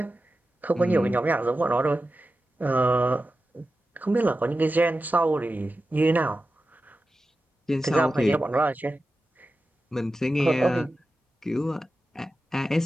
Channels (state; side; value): normal; both; correlation 0.93